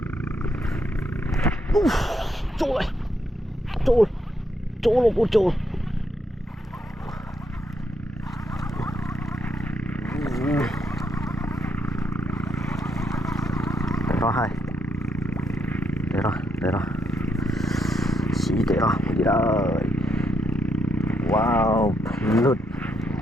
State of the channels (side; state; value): both; normal; correlation 0.77